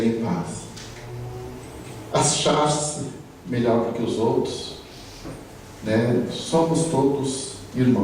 em paz. Achar-se melhor do que os outros, somos todos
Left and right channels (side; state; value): both; identical; correlation 1.00